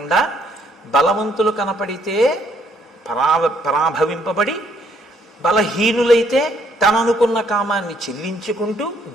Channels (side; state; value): both; normal; correlation 0.68